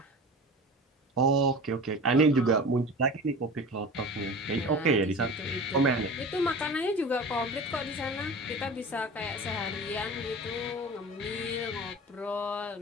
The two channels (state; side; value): normal; both; correlation 0.35